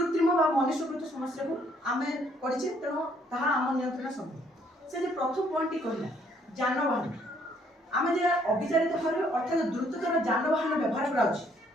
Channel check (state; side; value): normal; both; correlation 0.66